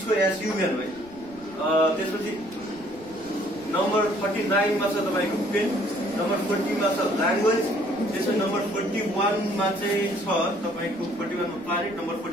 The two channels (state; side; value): noise; right; rumble, 23 dB below the sound